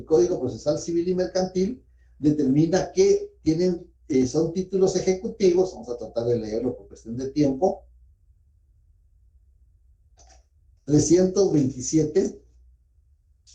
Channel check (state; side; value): identical; both; correlation 1.00